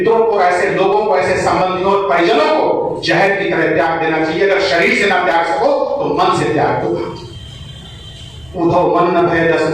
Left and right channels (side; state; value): left; noise; rumble, 28 dB below the sound